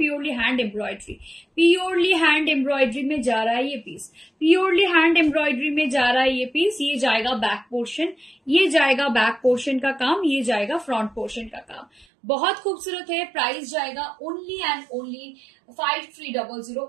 hand embroidery, purely hand embroidery में जा रहा है ये पीस, प्योरली हैंड एम्ब्रॉयडरी में जा रहा है ये पीस। ये जाएगा बैक पोर्शन, ये जाएगा बैक पोर्शन का काम, ये जाएगा फ्रंट पोर्शन का काम। बहुत खूबसूरत है, प्राइस जाएगा ओनली एंड ओनली 5300।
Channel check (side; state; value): left; drops out; at 12.1 s